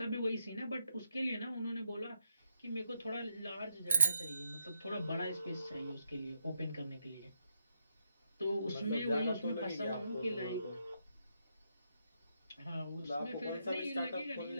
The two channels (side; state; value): both; inverted; correlation -0.80